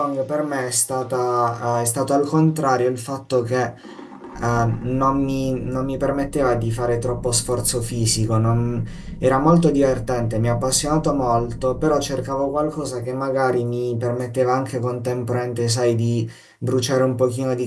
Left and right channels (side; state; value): both; identical; correlation 1.00